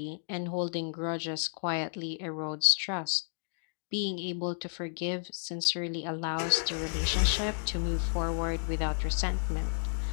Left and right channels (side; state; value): right; silent; digital silence